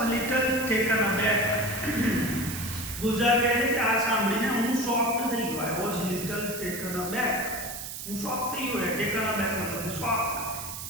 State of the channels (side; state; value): right; noise; hiss, 8 dB below the sound